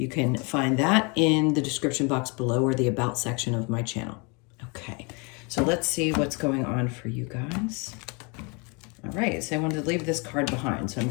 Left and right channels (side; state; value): right; quieter; 31.4 dB